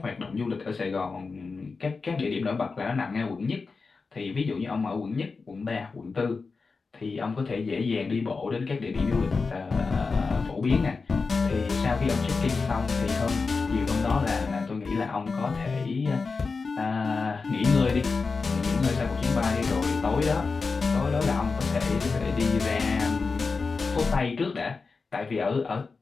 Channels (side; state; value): right; quieter; 4.4 dB